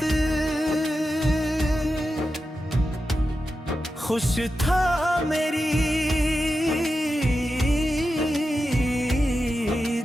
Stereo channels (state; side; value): normal; both; correlation 0.90